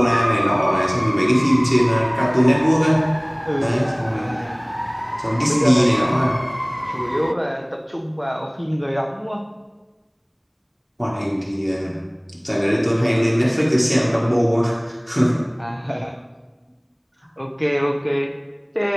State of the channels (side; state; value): both; identical; correlation 1.00